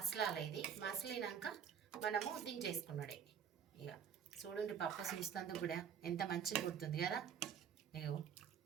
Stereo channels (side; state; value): left; quieter; 7.8 dB